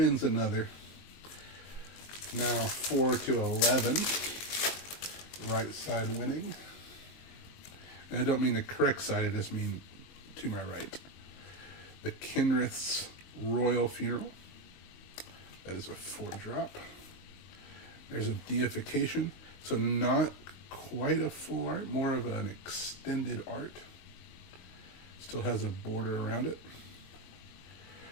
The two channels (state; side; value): late; right; 22 ms